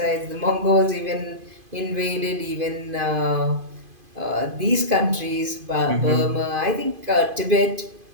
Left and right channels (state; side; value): late; left; 2.5 ms